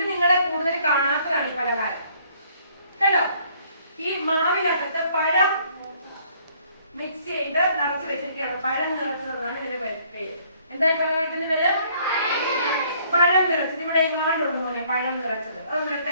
നിങ്ങളെ കൂടുതൽ കാണാത്തതാണ് ഈ പലഹാരം. കണ്ടോ? ഈ മാവിനകത്ത് പഴം മിക്സ് ചെയ്ത് നിറച്ച് വെച്ചിരിക്കുകയാണ്. പഴം നിറച്ചതെന്നാണ് ഇതിന്റെ പേര്. എന്താ ഈ പലഹാരത്തിന്റെ പേര്? പഴം നിറച്ചത്. ഇവിടെ എങ്ങാണ്ടുണ്ട് പോലെ പഴം നിറച്ചത്. അതൊന്നും എടുത്ത്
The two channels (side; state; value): both; inverted; correlation -0.62